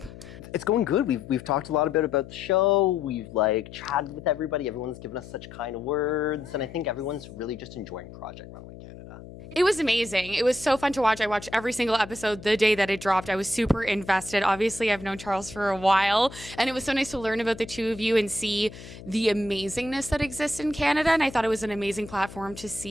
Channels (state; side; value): noise; left; hum, 16 dB below the sound